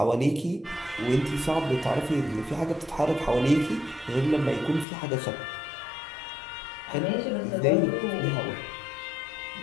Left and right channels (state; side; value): drops out; right; at 4.9 s